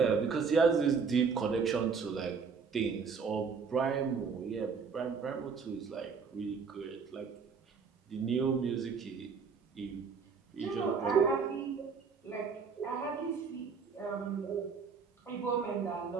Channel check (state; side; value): quieter; left; 5.6 dB